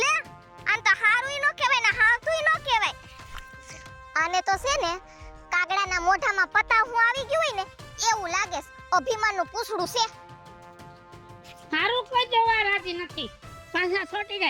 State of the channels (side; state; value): both; identical; correlation 1.00